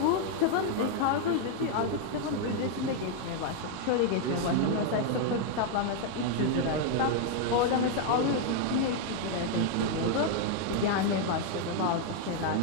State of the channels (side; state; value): both; different; correlation 0.00